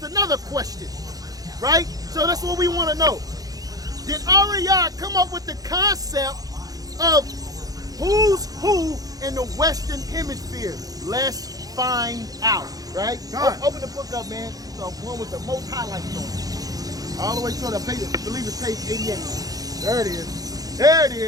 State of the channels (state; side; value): late; left; 0.18 ms